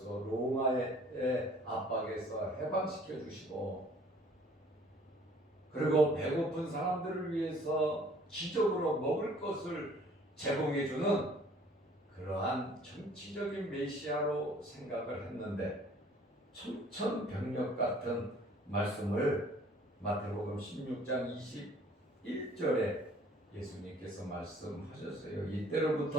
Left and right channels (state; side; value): normal; both; correlation 0.55